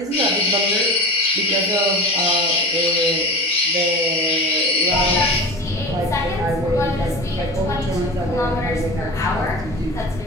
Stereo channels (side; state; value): both; normal; correlation 0.31